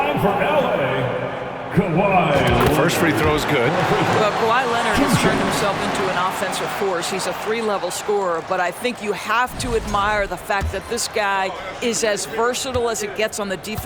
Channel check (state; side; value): identical; both; correlation 1.00